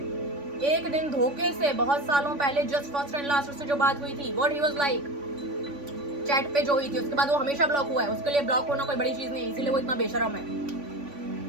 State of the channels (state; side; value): late; left; 3.5 ms